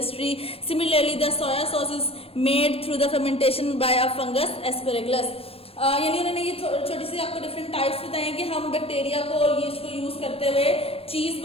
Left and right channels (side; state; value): right; late; 0.28 ms